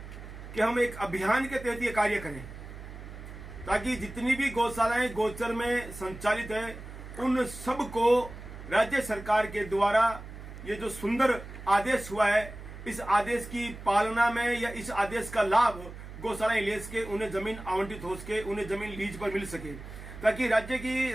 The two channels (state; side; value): noise; right; hum, 13 dB below the sound